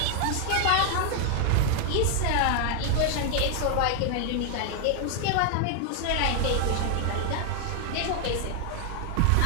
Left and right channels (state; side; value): different; both; correlation 0.00